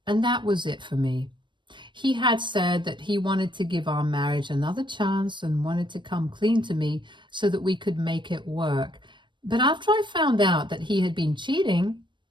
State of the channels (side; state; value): left; late; 0.23 ms